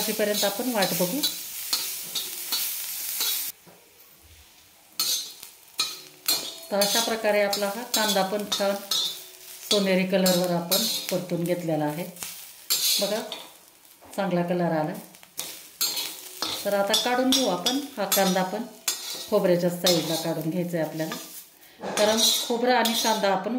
आपण वाट बघू। तर अशा प्रकारे आपला हा कांदा पण छान सोनेरी कलरवर आपण परतून घेतलेला आहे। बघा चांगला कलर आला। तर आता काढून घेऊ आपण हा कांदा पण खोबऱ्याच्या साईडला काढून घ्यायचा आहे आपल्याला, कारण खोबरं आणि कांदा आपण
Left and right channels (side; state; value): both; identical; correlation 1.00